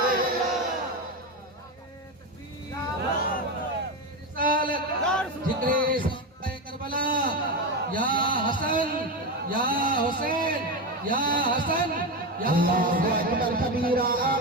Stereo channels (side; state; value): both; normal; correlation 0.15